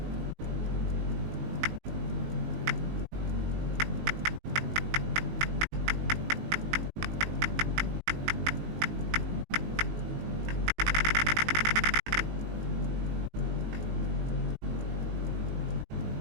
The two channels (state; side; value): late; left; 19 ms